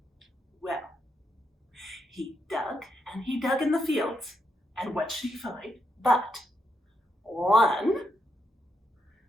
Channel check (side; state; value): both; normal; correlation 0.81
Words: Well, he dug and he dug in the fields, and what should he find but 1,